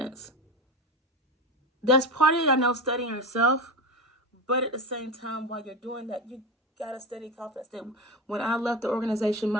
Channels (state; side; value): normal; both; correlation 0.22